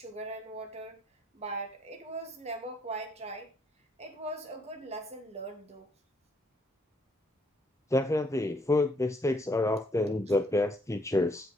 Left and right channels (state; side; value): normal; both; correlation 0.69